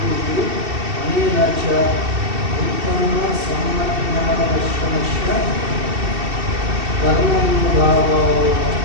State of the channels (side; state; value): left; late; 2.7 ms